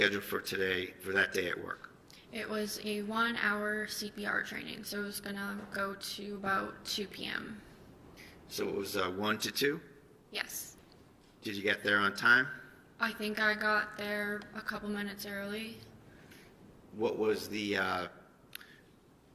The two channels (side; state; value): both; identical; correlation 1.00